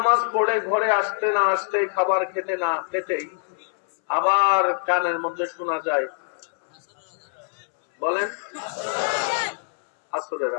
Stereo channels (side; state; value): right; silent; 63 dB below the other